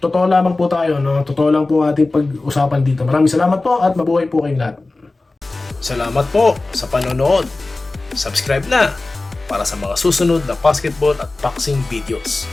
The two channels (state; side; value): quieter; right; 3.2 dB